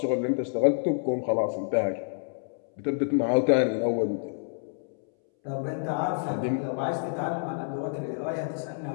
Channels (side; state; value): right; silent; 59 dB below the other